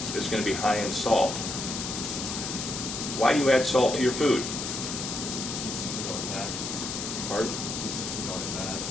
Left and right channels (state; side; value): noise; left; hiss, 4 dB below the sound